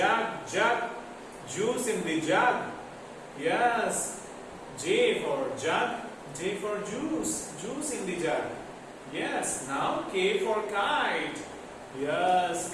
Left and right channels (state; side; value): identical; both; correlation 1.00